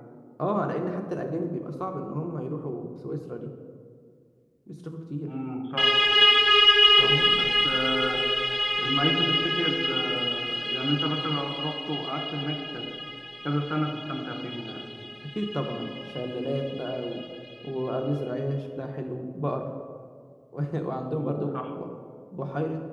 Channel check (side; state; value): both; identical; correlation 1.00